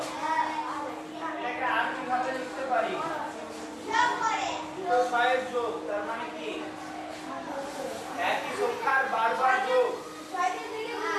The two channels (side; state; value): both; identical; correlation 1.00